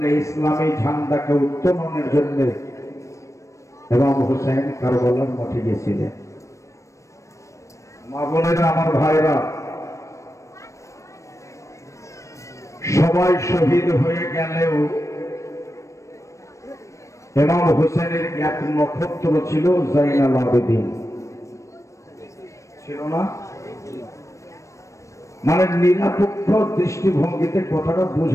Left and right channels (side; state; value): right; late; 0.15 ms